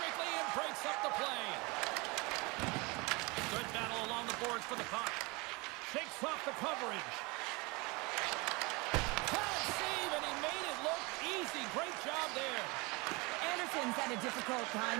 and breaks up the play. Good battle along the boards for the puck. Shakes off the coverage. Hard save, and he made it look easy. Great job there. Anderson's had a difficult time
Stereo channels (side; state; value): left; quieter; 26.5 dB